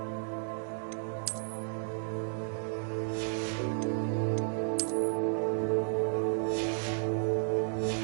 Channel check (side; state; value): left; silent; digital silence